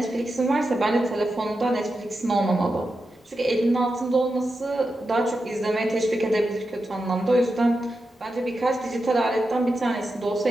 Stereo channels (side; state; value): both; normal; correlation 0.89